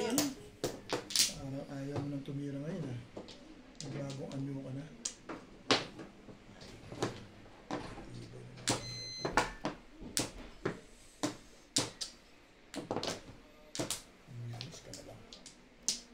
na. Ayaw mo nang tumira ngayon ha. Magbagong anyo ka na. Umilis ka na lang.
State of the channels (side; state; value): both; identical; correlation 1.00